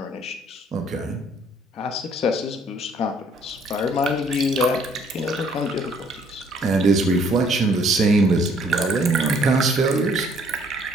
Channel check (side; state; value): both; normal; correlation 0.62